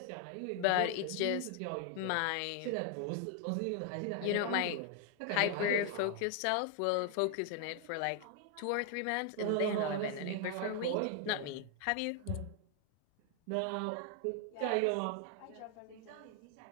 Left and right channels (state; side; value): different; both; correlation 0.00